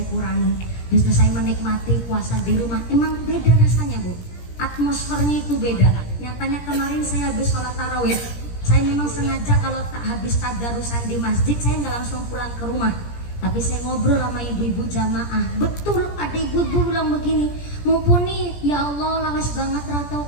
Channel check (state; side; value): late; right; 17 ms